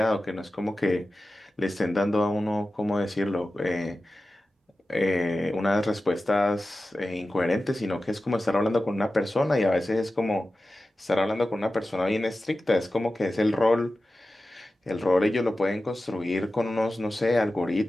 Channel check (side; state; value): both; normal; correlation 0.94